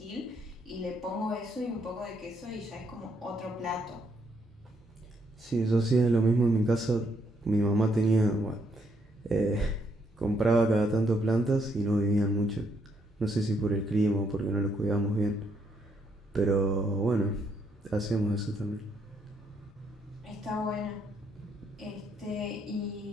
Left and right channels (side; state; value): both; normal; correlation 0.73